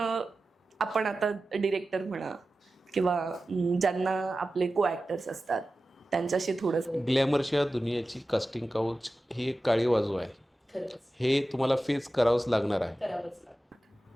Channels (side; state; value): both; normal; correlation 0.94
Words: आपण आता डिरेक्टर म्हणा किंवा ज्यांना आपले को ॲक्टर्स असतात त्यांच्याशी थोडंसं. ग्लॅमरच्या दुनियाची कास्टिंग काउच ही एक काळी बाजू आहे, हे तुम्हाला फेस करावंच लागणार आहे.